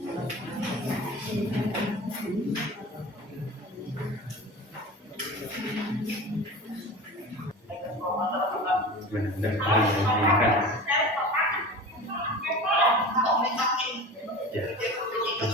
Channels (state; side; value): normal; both; correlation 0.34